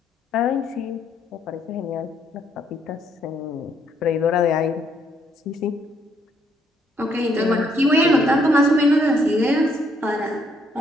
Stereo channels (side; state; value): both; normal; correlation 0.70